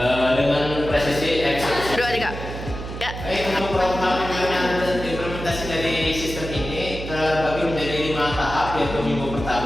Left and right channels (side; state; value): right; noise; hum, 8 dB below the sound